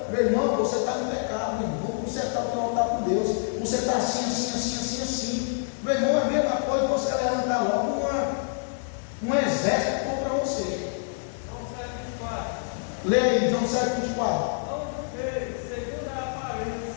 meu irmão, você está no pecado, meu irmão. Você está no altar com Deus. Você está assim. Meu irmão, é a mesma coisa que você levantar logo um exército contra você. João 7:24. Lê aí, João 7:24. Não julgueis segundo a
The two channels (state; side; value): silent; right; digital silence